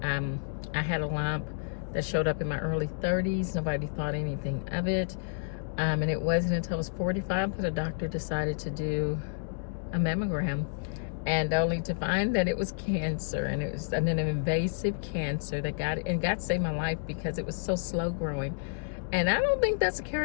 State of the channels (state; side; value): silent; right; digital silence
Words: I had a lump that showed up in my early 30s. Nobody thought anything of it. And it wasn't until I was 45 that a doctor decided to do a mammogram, and only to find that it was cancer, and it was an invasive cancer that God saved my life because it was so slow growing. And I don't think that's a